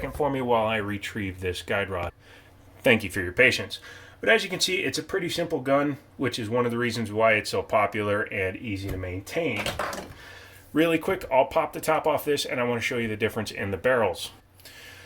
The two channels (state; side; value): identical; both; correlation 1.00